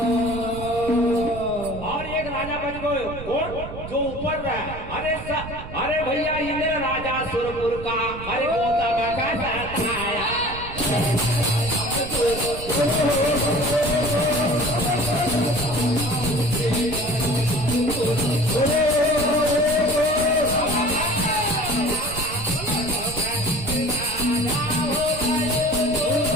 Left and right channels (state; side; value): noise; right; rumble, 11 dB below the sound